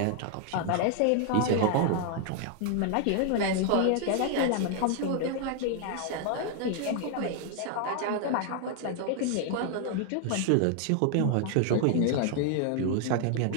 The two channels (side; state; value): both; different; correlation 0.00